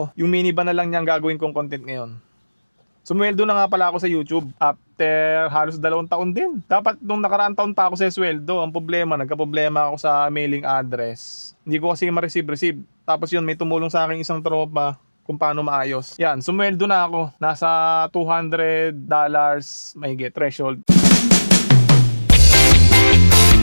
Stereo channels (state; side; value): inverted; both; correlation -1.00